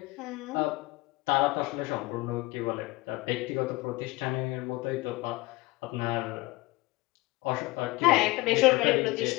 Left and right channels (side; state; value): right; quieter; 21.4 dB